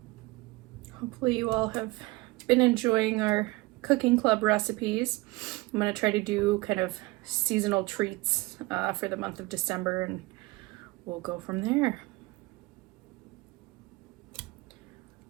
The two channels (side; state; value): left; quieter; 22.0 dB